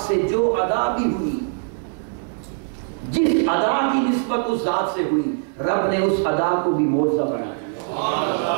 جو ادا بھی ہوئی، جس ادا کی نسبت اس ذات سے ہوئی، رب نے اس ادا کو بھی معجزہ بنا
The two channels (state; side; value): silent; left; digital silence